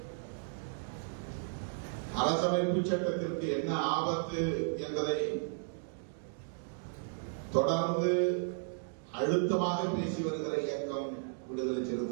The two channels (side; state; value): left; silent; digital silence